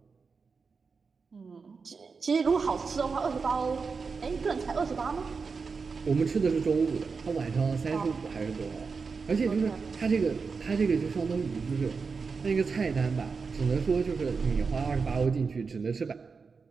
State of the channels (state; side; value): quieter; left; 5.0 dB